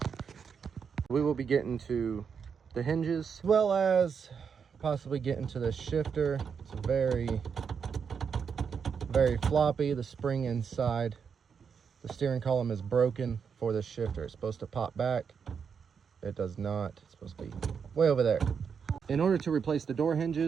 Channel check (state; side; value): quieter; left; 6.5 dB